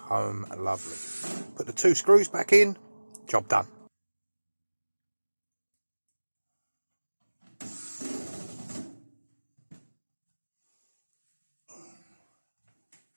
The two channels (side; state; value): both; inverted; correlation -1.00